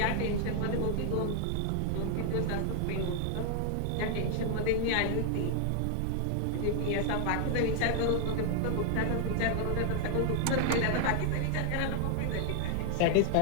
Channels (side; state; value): both; different; correlation 0.00